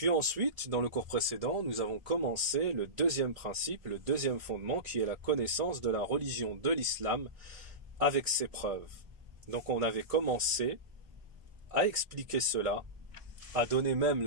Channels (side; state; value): left; late; 1.7 ms